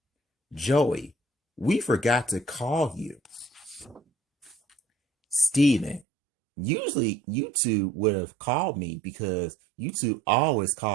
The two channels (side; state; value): left; drops out; at 6.1 s